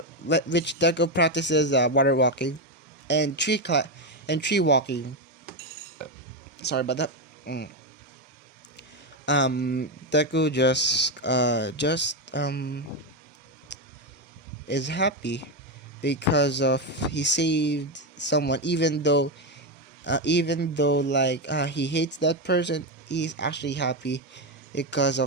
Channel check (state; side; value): normal; both; correlation 0.09